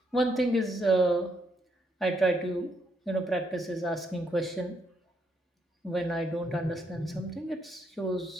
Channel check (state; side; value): normal; both; correlation 0.75